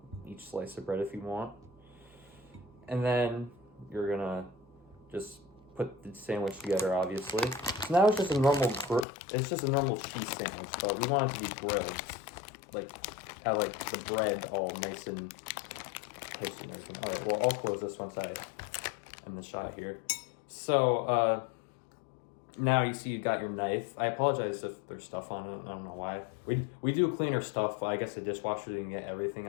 each slice of bread if you want. And then you're gonna just put the sandwich together, obviously. So now it's just a normal cheese sandwich, but we want it to be grilled. Like, have like the bread all nice and toasty and everything. All right, well, I'll close this once I end the shot here. So, now you see you got your knife. I apologize if there's stuff on it. I don't know why. We do clean our stuff. I guess the dishwasher didn't get everything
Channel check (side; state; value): right; drops out; at 9.1 s